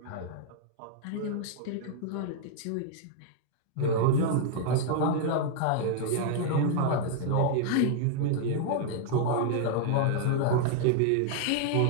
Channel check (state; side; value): different; both; correlation -0.01